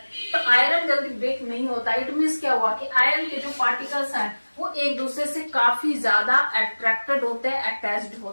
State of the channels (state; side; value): inverted; both; correlation -1.00